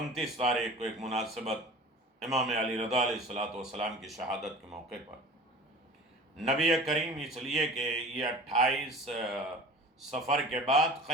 تاریخ کو ایک مناسبت امام علی رضا علیہ السلام کی شہادت کے موقع پر نبی کریم، اس لیے کہ یہ 28 سفر کے بعد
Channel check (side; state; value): both; normal; correlation 0.40